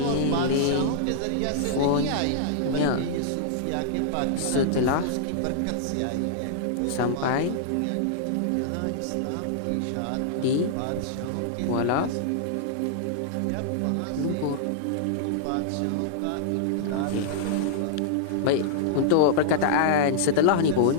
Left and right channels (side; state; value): both; different; correlation -0.02